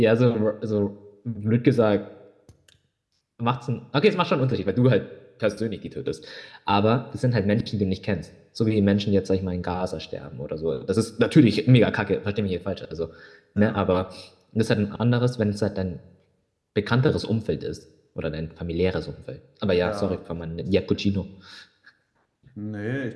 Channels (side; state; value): both; identical; correlation 1.00